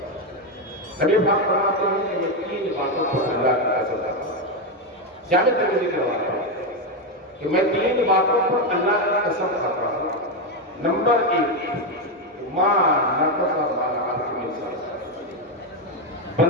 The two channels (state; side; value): normal; both; correlation 0.07